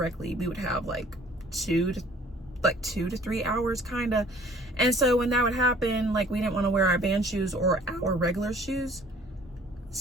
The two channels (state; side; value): normal; both; correlation 0.54